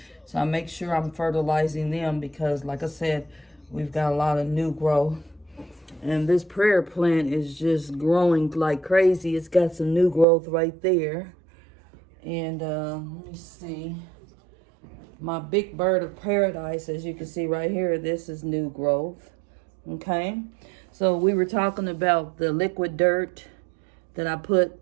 So I make sure I'm fertilizing them because, like I said, we've got a lot of new growth. And this prayer plant is just growing like crazy. It's got some new growth right there. And let me see. My big bird of paradise, as you can see right here, this is new growth. Okay. So we were talking about the liquid dirt that I put.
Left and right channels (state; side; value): drops out; left; at 10.2 s